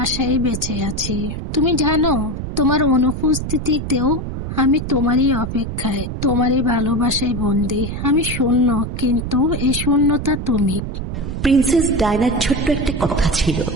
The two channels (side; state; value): right; noise; rumble, 5 dB below the sound